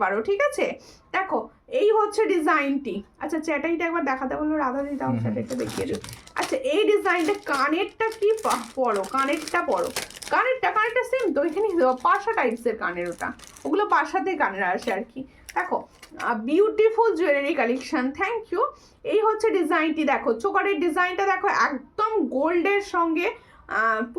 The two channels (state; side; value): identical; both; correlation 1.00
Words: পারো, ঠিক আছে? দেখো এই হচ্ছে ডিজাইনটি। আচ্ছা চ্যাটাইটা একবার দেখাতে বললো রাধা দি, দাও চ্যাটাইটা দেখিয়ে দিই। আচ্ছা এই ডিজাইনটা, কানেরটা কি পরো, কানেরটা পরো, কানেরটা সেম তো, এখানে পাশা টাইপসের কানের, ওগুলো পাশাতে কানের আসে আর কি। দেখো beautiful jewellery collection, thank you. এই হচ্ছে ডিজাইনটি, দেখো চোকারের ডিজাইনটা দেখো, একদম গোল্ডের সঙ্গে